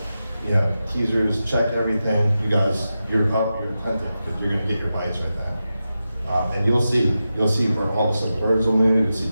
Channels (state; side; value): inverted; both; correlation -0.91